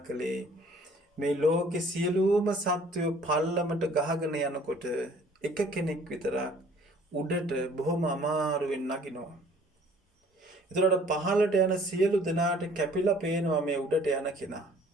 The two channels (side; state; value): both; normal; correlation 0.55